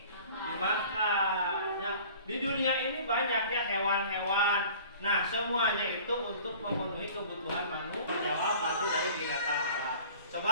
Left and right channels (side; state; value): both; inverted; correlation -0.46